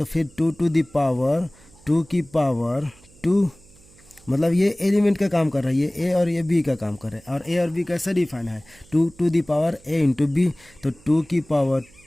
फिर 2 टू दी पावर 2 की पावर 2, मतलब ये एलिमेंट का काम कर रहा है, ये ए और ये बी का काम कर रहा है, और ए और बी कैसे डिफाइन है, 2 to the power A into B, तो 2 की पावर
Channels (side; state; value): right; noise; hum, 27 dB below the sound